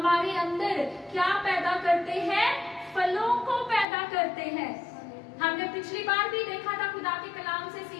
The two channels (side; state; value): right; drops out; at 3.9 s